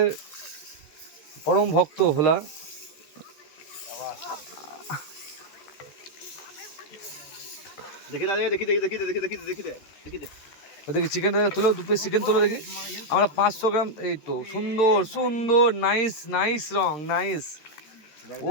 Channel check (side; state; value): right; late; 13 ms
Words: পরম ভক্ত ভোলা। দেখি চিকেনটা তুলো, 2 পিস চিকেন তুলো দেখি। আমরা 500 গ্রাম, এই তো সুন্দর সুন্দর, নাইস নাইস রং, নাইস।